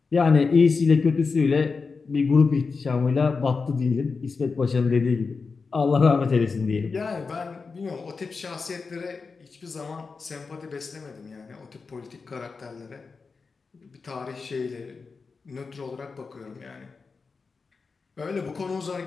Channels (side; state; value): right; quieter; 4.7 dB